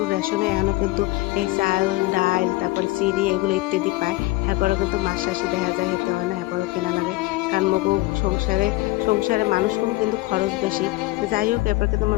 রেশনে এখনও কিন্তু এই চাল, ডাইল, তারপরে চিনি এগুলো ইত্যাদি পায়। এরপরেও কিন্তু মাস শেষে দেখা যায় হেতে হয় না, এরপরেও কেনা লাগে। কারণ মগু সংসারে মানুষ কম কিন্তু খরচ বেশি। যাই হোক, এরপর কিন্তু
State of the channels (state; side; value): quieter; right; 20.0 dB